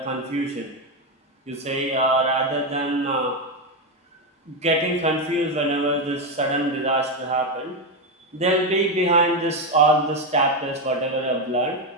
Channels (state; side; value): normal; both; correlation 0.08